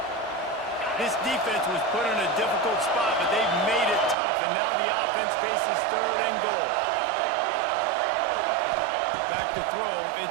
This defense was put in a difficult spot, but they've made it tough, and now the offense faces 3rd and goal. Back to throw,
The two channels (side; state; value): left; drops out; at 4.2 s